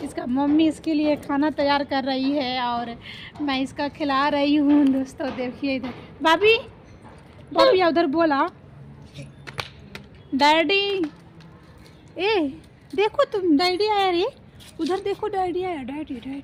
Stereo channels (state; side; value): identical; both; correlation 1.00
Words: इसका मम्मी इसके लिए खाना तैयार कर रही है और मैं इसका खिला रही हूँ। दोस्तों देखिए इधर भाभी, भाभी उधर बोला डैडी। ए देखो तुम, डैडी आया रे, उधर देखो डैडी आया, डैडी